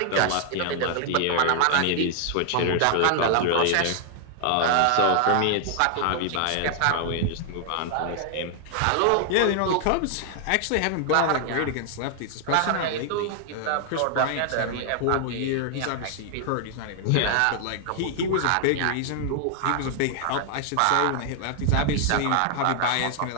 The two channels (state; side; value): different; both; correlation 0.00